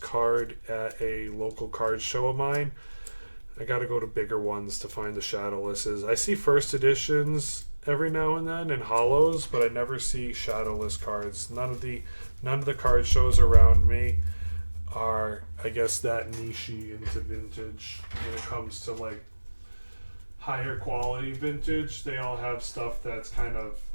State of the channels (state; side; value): inverted; both; correlation -1.00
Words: at a local card show of mine. I got to go to bigger ones to find the Shadowlesses. I see first editions every now and then and hollows, but I never see Shadowless cards. None of the card shows around me are, I guess, that niche-y into vintage when it comes to like higher quality vintage. They all have stuff that's kind of